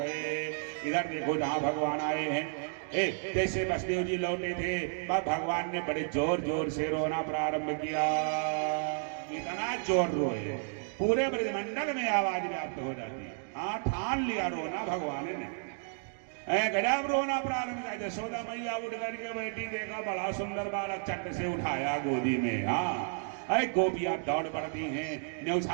इधर देखो जहाँ भगवान आए हैं, जैसे वसुदेव जी लौटे थे, भगवान ने बड़े जोर जोर से रोना प्रारंभ किया। इतना जोर रोए पूरे ब्रजमंडल में आवाज व्याप्त हो जाती है। हाँ, ठान लिया रोना भगवान ने। गजब रोना प्रारंभ किया। यशोदा मैया उठ करके बैठी, देखा बड़ा सुंदर बालक, चट से उठाया गोदी में। हाँ, गोपियां दौड़ पड़ती हैं,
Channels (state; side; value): silent; left; 56 dB below the other